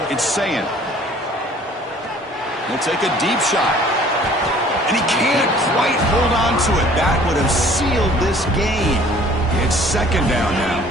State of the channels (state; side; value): normal; both; correlation 0.53